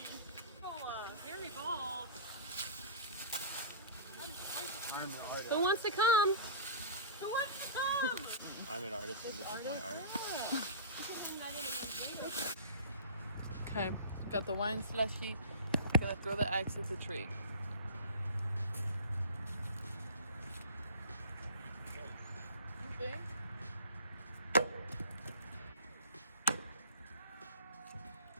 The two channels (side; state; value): both; inverted; correlation -0.36